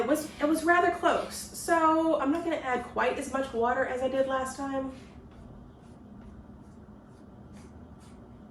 was rather close. So I'm not going to add quite as much water as I did last time.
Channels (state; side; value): identical; both; correlation 1.00